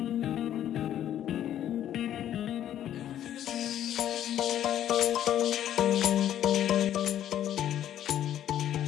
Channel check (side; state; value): right; quieter; 11.1 dB